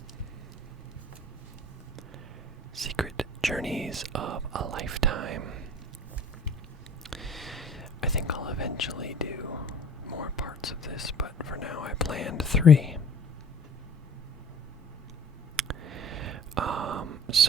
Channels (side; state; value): both; normal; correlation 0.47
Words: Secret Journeys of a Lifetime. I think I'll eventually do more parts of this, but for now I planned 3.